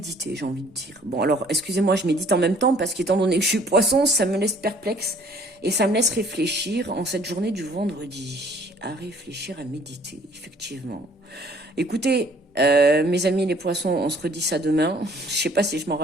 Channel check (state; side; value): normal; both; correlation 0.57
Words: j'ai envie de dire. Bon, alors, excusez-moi, je médite en même temps, parce qu'étant donné que je suis poisson, ça me laisse perplexe, et ça me laisse réfléchir en cette journée du vendredi. À réfléchir, à méditer, effectivement. Écoutez, mes amis les poissons, on se redit ça demain. Je sais pas si je m'en